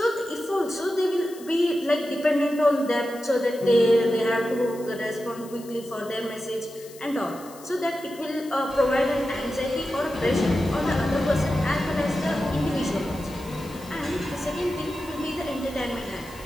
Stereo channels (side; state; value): left; noise; hiss, 20 dB below the sound